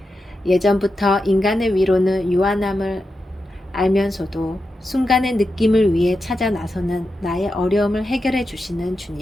예전부터 인간의 위로는 유한함을 알면서도 순간의 느낌을 위해 찾아 나서는 나의 어려움을 해결해 주시는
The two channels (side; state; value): both; normal; correlation 0.89